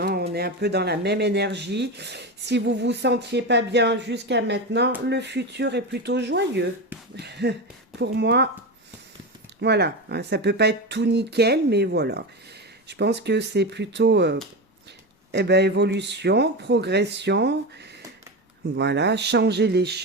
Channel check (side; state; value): both; normal; correlation 0.19